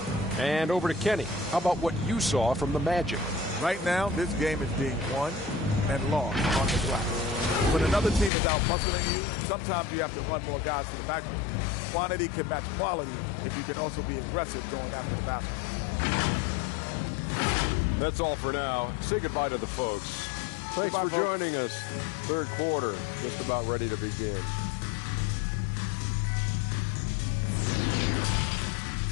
And over to Kenny. How about what you saw from the Magic? Right now, this game is being won and lost on the glass. When another team is out muscling you, sometimes you have to run more guys to the backcourt. Quantity can match quality if you can also be aggressive going after the basket. That's all for now. Say goodbye to the folks. Thanks for joining us. Third quarter, just about ready to begin.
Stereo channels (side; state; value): right; drops out; at 8.3 s